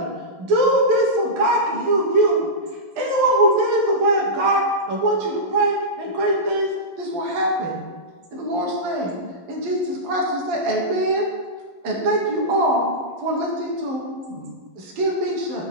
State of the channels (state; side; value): late; left; 11 ms